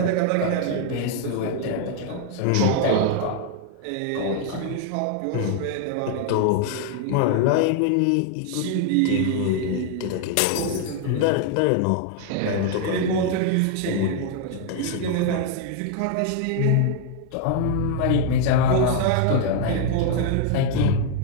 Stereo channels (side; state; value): both; different; correlation 0.00